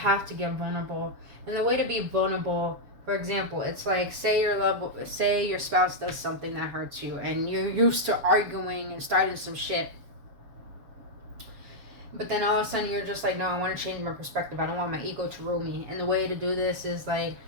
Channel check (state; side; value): late; left; 7.0 ms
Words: to get vulnerable. And the way to be vulnerable, for example, it's like say your spouse does something that hurts you and you're used to arguing and starting some shit. But then all of a sudden you're just like, no, I want to change my perspective. I don't want my ego to rule me. And the way to do this is like,